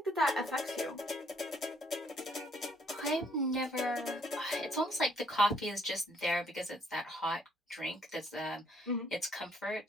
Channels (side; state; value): both; normal; correlation 0.67